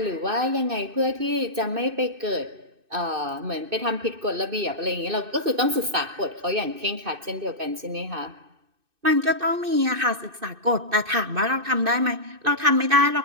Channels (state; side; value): late; left; 2.6 ms